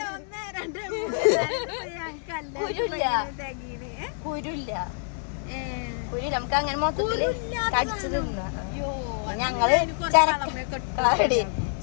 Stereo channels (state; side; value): silent; right; 56 dB below the other